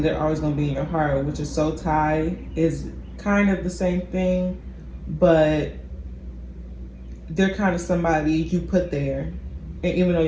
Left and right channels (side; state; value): both; identical; correlation 1.00